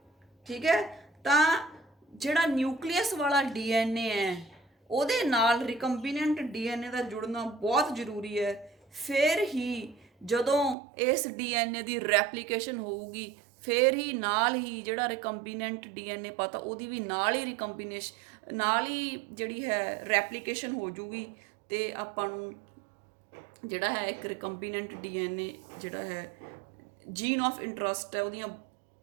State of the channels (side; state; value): left; drops out; at 10.8 s